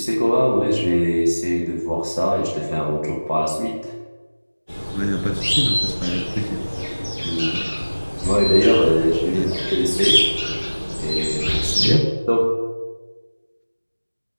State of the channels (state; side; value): inverted; both; correlation -1.00